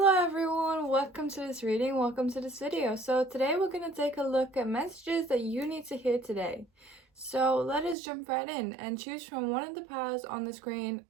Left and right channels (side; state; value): left; drops out; at 8.0 s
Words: everyone, welcome to this reading, welcome to this video. So today we're going to take a look at messages that you need to hear today. So let us jump right in and choose from one of the piles on the screen